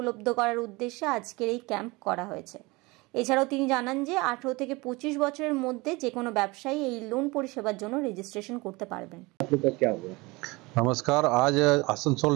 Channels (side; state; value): left; quieter; 23.9 dB